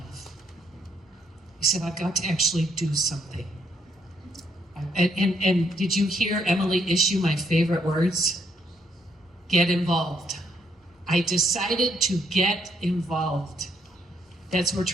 He said, I've got to actually do something. And did you hear Emily issue my favorite words? Get involved. I decided to get involved. That's what we're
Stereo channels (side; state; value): both; normal; correlation 0.72